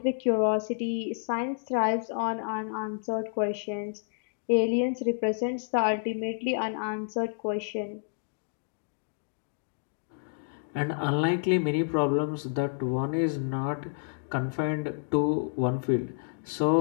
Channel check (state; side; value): silent; right; digital silence